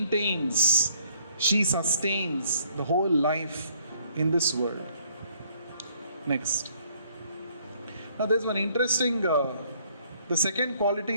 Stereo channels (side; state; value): both; inverted; correlation -0.64